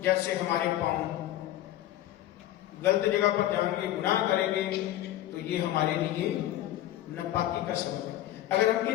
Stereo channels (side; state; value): right; quieter; 13.7 dB